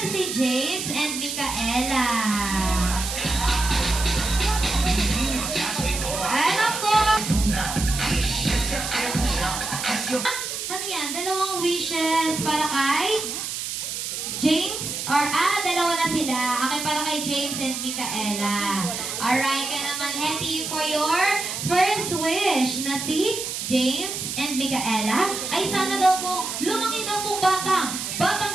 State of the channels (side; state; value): right; noise; hiss, 5 dB below the sound